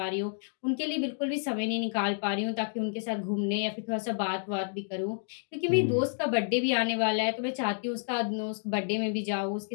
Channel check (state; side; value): silent; right; digital silence